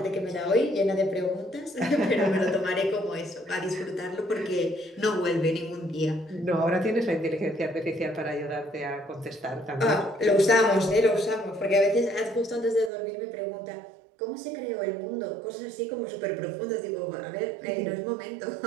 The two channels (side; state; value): left; drops out; at 12.9 s